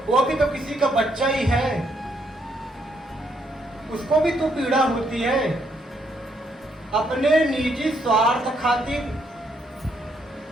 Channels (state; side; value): normal; both; correlation 0.73